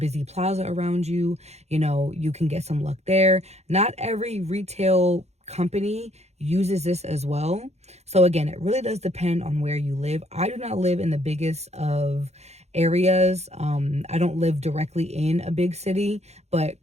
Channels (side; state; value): left; late; 0.31 ms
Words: plaza around you, you know, you can get some luck there. Not every retail company uses this as well. So again, it really does depend on where you live. I do not live in the biggest of areas. I don't live directly in a big city,